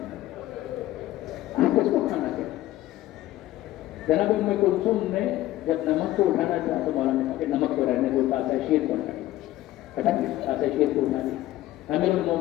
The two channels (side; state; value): right; quieter; 15.2 dB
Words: آپ کس کو کھانا کہہ رہے ہیں؟ جناب ام کلثوم نے جب نمک کو اٹھانا چاہا تو مولا نے کہا کہ نمک کو رہنے دو, تاسا شیر کو ہٹا دیا, تاسا شیر کو اٹھا دیا. امیر